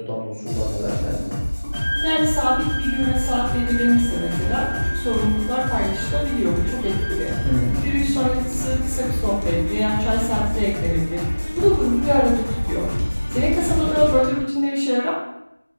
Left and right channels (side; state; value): both; inverted; correlation -1.00